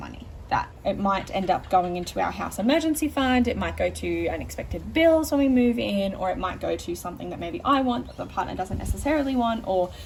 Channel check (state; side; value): identical; both; correlation 1.00